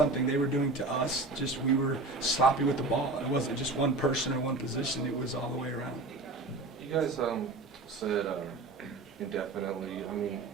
they were doing to us. Just we were sloppy with the ball. It wasn't just one person or one position. It was all the way around. You guys said indefinitely. I mean,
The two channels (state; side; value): quieter; left; 3.1 dB